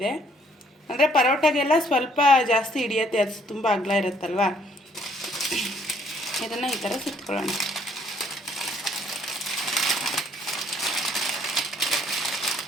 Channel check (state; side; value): normal; both; correlation 0.64